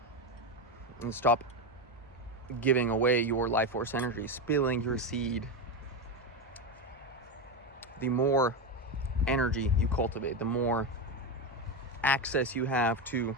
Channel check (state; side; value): normal; both; correlation 0.13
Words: and stop giving away your life force energy, spilling your seed, the more energy you cultivate, the more access you have to